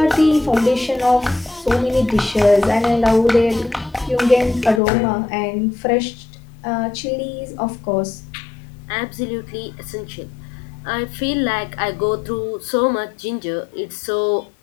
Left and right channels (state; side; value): drops out; right; at 4.8 s